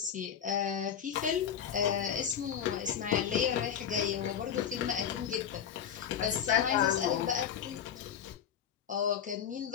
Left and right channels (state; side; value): quieter; right; 8.6 dB